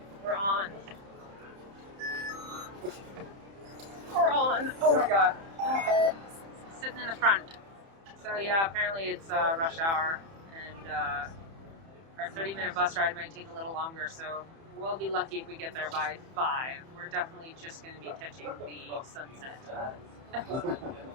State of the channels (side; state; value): left; late; 30 ms